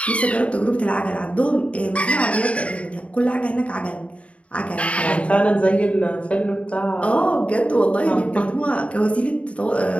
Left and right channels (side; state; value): right; late; 0.063 ms